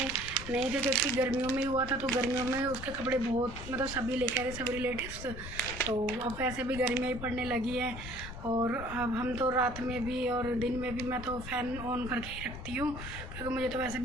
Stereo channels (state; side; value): noise; left; rumble, 10 dB below the sound